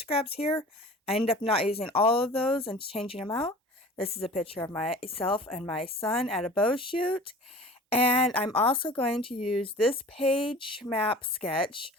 here. I ended up not using all of those and changing them out. This is a picture of myself and my son at a bow shoot, and I'm also going to use this page map sketch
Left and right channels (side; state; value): both; normal; correlation 0.42